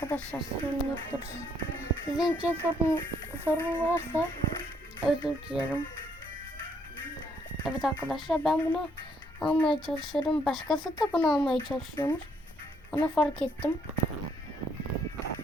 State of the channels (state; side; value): normal; both; correlation 0.70